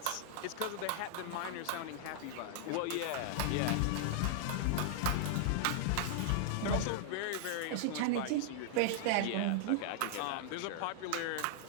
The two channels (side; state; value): both; different; correlation -0.01